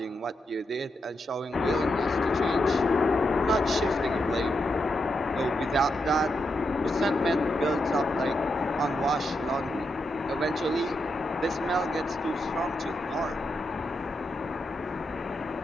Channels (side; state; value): both; normal; correlation 0.84